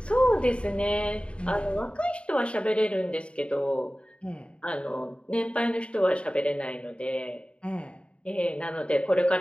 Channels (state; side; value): late; right; 0.058 ms